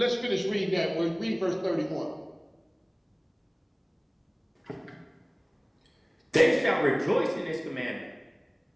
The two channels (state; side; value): identical; both; correlation 1.00